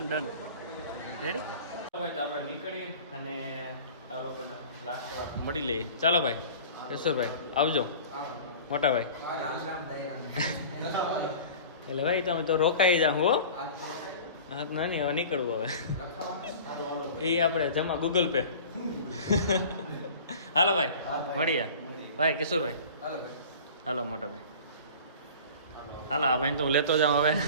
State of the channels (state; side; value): inverted; both; correlation -0.41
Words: રેડી ભાઈ તો આપણે નીકળી અને આ લોકોના લાસ્ટ વાર મળી લઈએ ચાલો ભાઈ કેશોરભાઈ આવજો મોટા ભાઈ એટલે ભાઈ તમે તો રોકાઈ જાઓ હો હા તો નહીં હવે નીકળવું હવે એ આપણે જમા ગૂગલ પે હાલો ભાઈ મળીએ ભાઈ કિશોરભાઈ હાલો મોટા ભાઈ હાલો આ ભાઈ તો હું લેતો જાઉં હવે